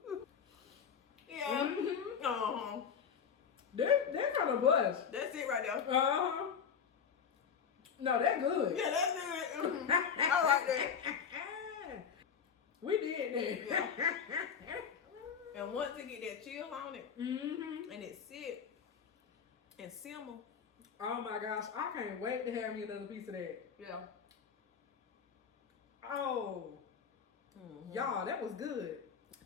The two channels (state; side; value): quieter; right; 7.1 dB